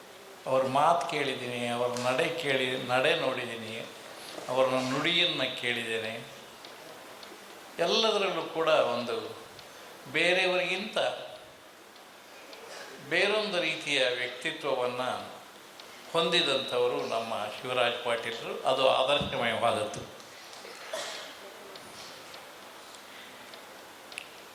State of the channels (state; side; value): identical; both; correlation 1.00